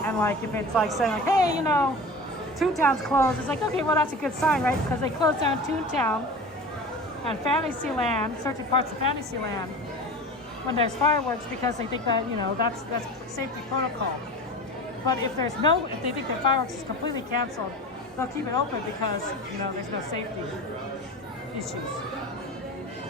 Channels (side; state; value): both; normal; correlation 0.34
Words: and like if it's like saying like, hey, you know, Toontown's closed. It's like, okay, well that's a good sign, right? Because they closed down Toontown and Fantasyland, certain parts of Fantasyland, when there's fireworks, because they think that, you know, that's safety protocol. But if they think that fireworks is completely canceled, they'll keep it open because, you know, there's no safety issues.